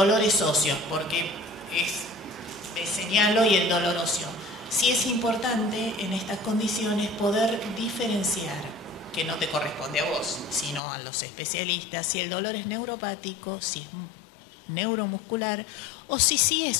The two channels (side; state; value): right; drops out; at 10.8 s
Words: óseos, porque es señalo y el dolor óseo. Sí es importante en estas condiciones poder diferenciar, que no te corresponde a vos, sino a los especialistas, si el dolor es neuropático, si es neuromuscular, o si sí